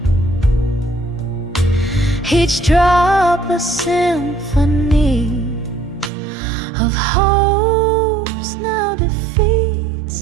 each drop a symphony of hopes now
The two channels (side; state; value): left; drops out; at 6.1 s